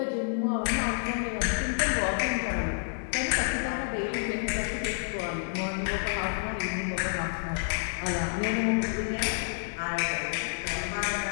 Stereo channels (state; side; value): silent; right; digital silence